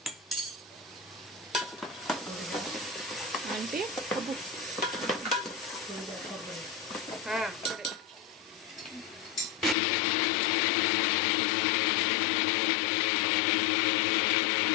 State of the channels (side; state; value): right; drops out; at 9.8 s